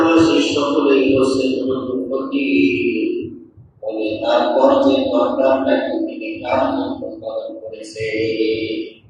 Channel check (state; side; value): identical; both; correlation 1.00